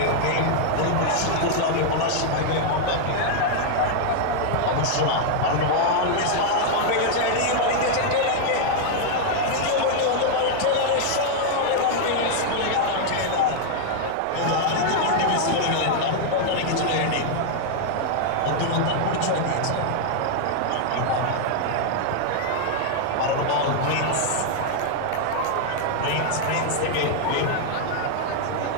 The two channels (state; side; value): different; both; correlation -0.01